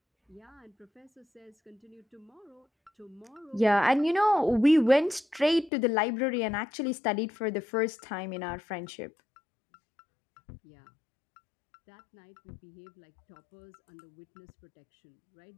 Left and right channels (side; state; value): right; drops out; at 5.7 s